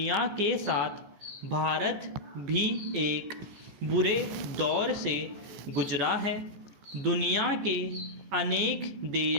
के साथ भारत भी एक बुरे दौर से गुजरा है। दुनिया के अनेक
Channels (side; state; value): left; late; 15 ms